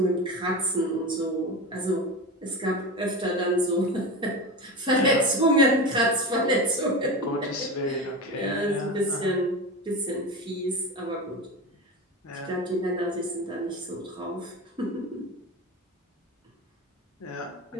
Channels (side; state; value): both; normal; correlation 0.25